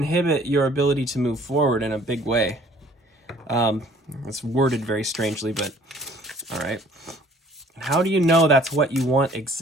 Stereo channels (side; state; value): both; normal; correlation 0.55